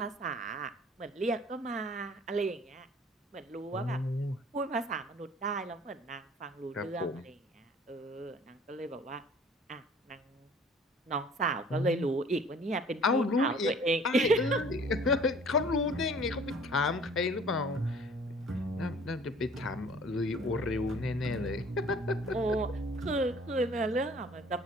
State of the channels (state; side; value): normal; both; correlation 0.51